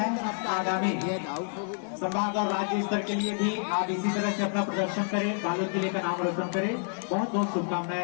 आगामी संभाग और राज्य स्तर के लिए भी आप इसी तरह से अपना प्रदर्शन करें, बालोद जिले का नाम रोशन करें। बहुत बहुत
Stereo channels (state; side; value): silent; right; 56 dB below the other